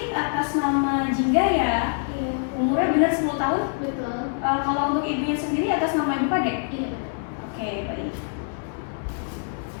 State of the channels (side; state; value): right; silent; 62 dB below the other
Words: atas nama Jingga ya? Iya. Umurnya benar 10 tahun? Betul. Kalau untuk ibunya sendiri atas nama Ibu Kade? Iya. Oke, baik.